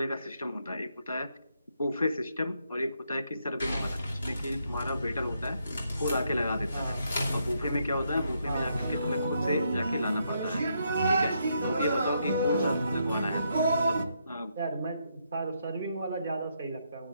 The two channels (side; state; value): both; inverted; correlation -0.78